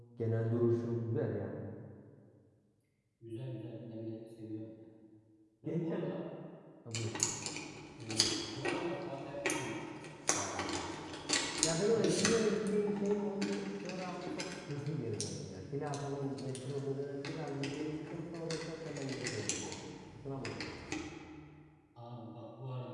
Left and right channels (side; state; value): both; identical; correlation 1.00